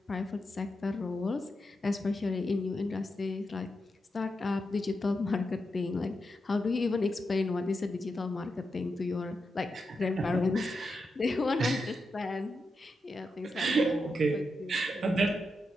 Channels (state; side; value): normal; both; correlation 0.87